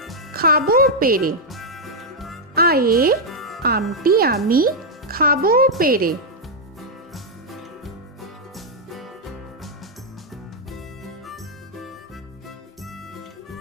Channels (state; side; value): normal; both; correlation -0.02